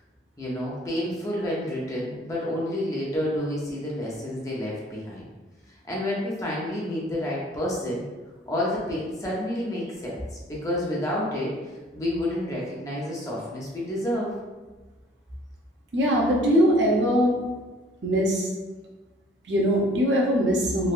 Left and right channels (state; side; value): normal; both; correlation 0.54